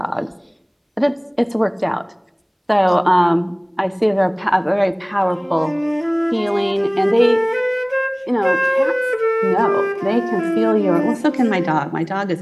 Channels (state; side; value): identical; both; correlation 1.00